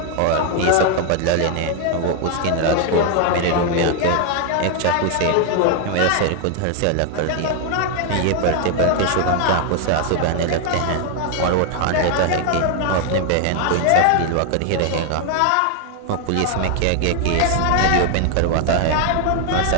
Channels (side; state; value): both; different; correlation 0.00